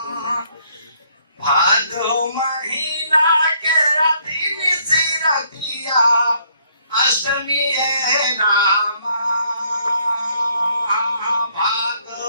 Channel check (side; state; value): both; inverted; correlation -0.67